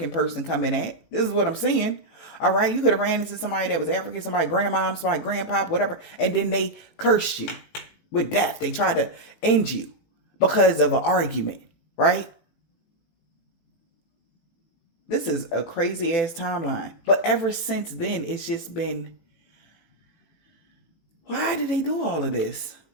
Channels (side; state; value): right; late; 18 ms